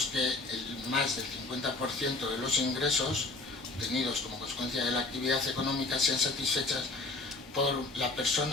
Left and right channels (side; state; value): right; quieter; 3.3 dB